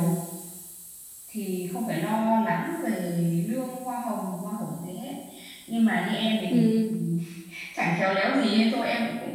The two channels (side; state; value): both; identical; correlation 1.00